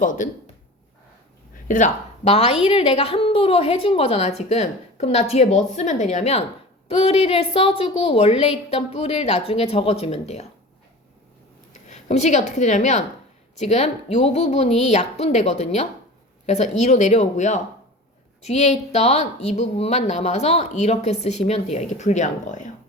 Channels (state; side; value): normal; both; correlation 0.36